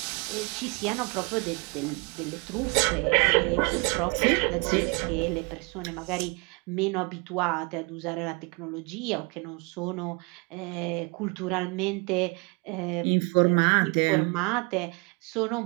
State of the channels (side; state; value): left; quieter; 30.5 dB